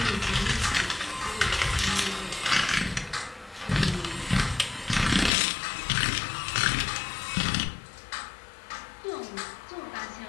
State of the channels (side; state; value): right; drops out; at 5.3 s